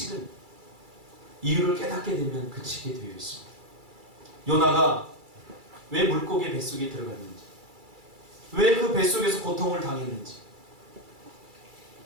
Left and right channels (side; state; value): left; late; 2.3 ms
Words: 이유를 깨닫게 되면 그치게 되어 있습니다. 요나가 왜 물고기 뱃속에 들어갔는지, 왜 그 뱃속에서 고통을 당했는지